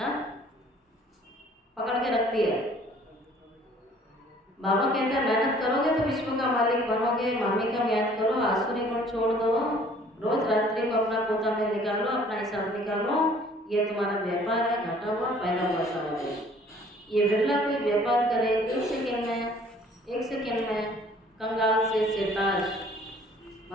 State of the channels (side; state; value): both; normal; correlation 0.55